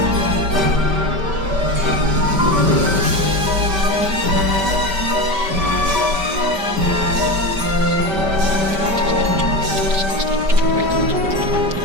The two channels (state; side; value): late; left; 5.1 ms